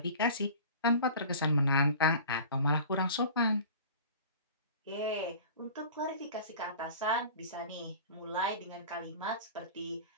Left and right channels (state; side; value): inverted; both; correlation -0.40